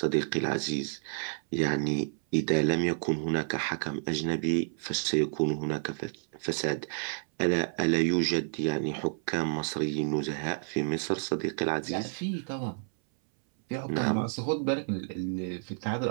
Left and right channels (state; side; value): silent; left; 58 dB below the other